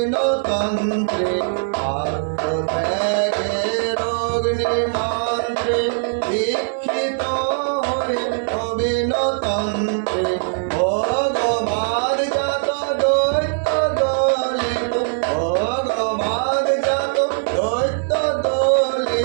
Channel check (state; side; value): silent; left; digital silence